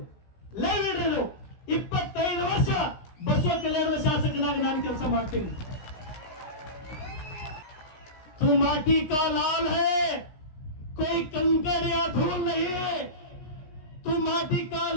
ಲೈವ್ ಇಡ್ರಿ. 25 ವರ್ಷ ಬಸವ ಕಲ್ಯಾಣದ ಶಾಸಕನಾಗಿ ನಾನು ಕೆಲಸ ಮಾಡ್ತೀನಿ. तू माटी का लाल है, कोई कंकड़ या धूल नहीं. तू माटी का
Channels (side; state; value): right; late; 16 ms